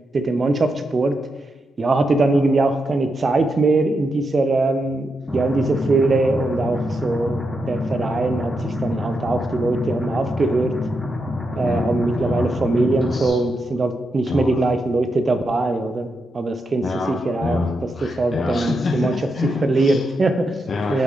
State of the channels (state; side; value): normal; both; correlation 0.84